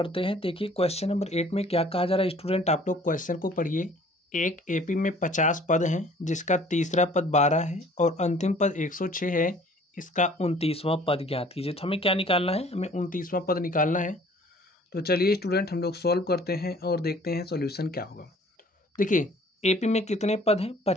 हैं। देखिए क्वेश्चन नंबर 8 में क्या कहा जा रहा है स्टूडेंट, आप लोग क्वेश्चन को पढ़िए। एक एपी में 50 पद हैं, जिसका तीसरा पद 12 है और अंतिम पद 106 है। इसका 29वां पद ज्ञात कीजिए। तो हमें क्या निकालना है? हमें 29वां पद निकालना है। तो चलिए स्टूडेंट, हम लोग सॉल्व करते हैं और देखते हैं सोल्यूशन क्या होगा। देखिए एपी में कितने पद हैं?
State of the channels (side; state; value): both; normal; correlation 0.53